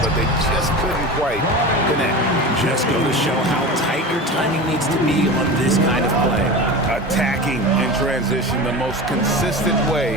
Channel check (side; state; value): both; normal; correlation 0.30